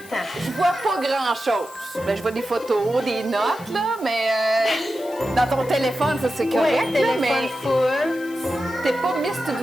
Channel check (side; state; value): left; noise; hiss, 21 dB below the sound